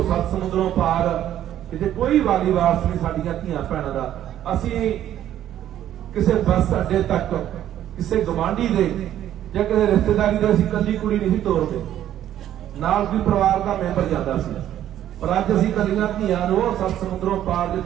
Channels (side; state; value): left; quieter; 11.6 dB